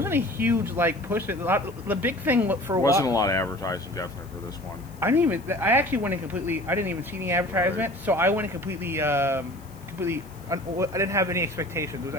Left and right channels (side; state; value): left; noise; hiss, 25 dB below the sound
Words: a huge push. The big thing for a while wasn't a lot of advertising definitely for this one. I actually went in completely. I didn't even see any advertisement, so I went in completely. I didn't have any expectations. It